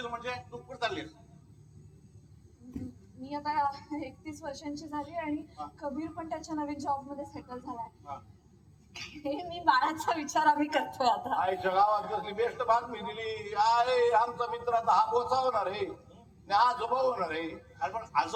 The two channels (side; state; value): both; identical; correlation 1.00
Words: म्हणजे तू कुठे चाललीस? मी आता 31 वर्षांची झाली आणि कबीर पण त्याच्या नवीन जॉब मध्ये सेटल झालाय. हे मी बाळाचा विचार आम्ही करतोय आता. आईच्या गावात कसली बेस्ट बातमी दिली. आहे आमचा मित्र आता हा बोचा होणार आहे, आजोबा होणार आहे. अरे पण